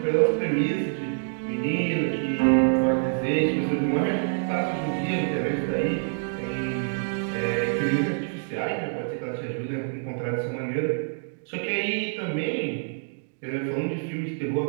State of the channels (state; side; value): silent; left; digital silence